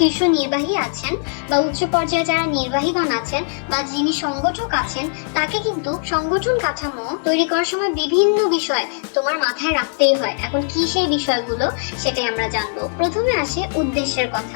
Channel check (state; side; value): silent; right; 61 dB below the other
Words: নির্বাহী আছেন বা উচ্চ পর্যায়ে যারা নির্বাহীগণ আছেন বা যিনি সংগঠক আছেন, তাকে কিন্তু সংগঠন কাঠামো তৈরি করার সময় বিভিন্ন বিষয় তোমার মাথায় রাখতেই হয়। এখন কি সেই বিষয়গুলো সেটাই আমরা জানবো। প্রথমে আসে উদ্দেশ্যের